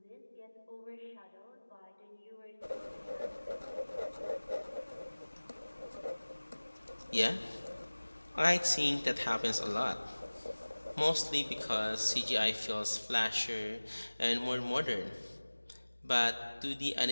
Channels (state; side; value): inverted; both; correlation -1.00